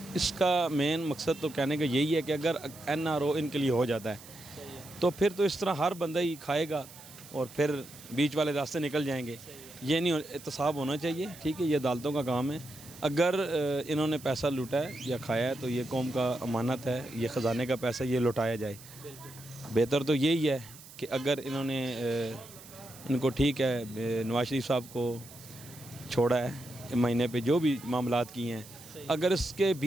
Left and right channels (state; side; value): noise; right; hiss, 18 dB below the sound